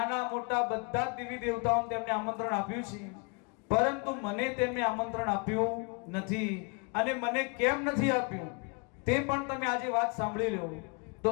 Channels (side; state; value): right; quieter; 33.9 dB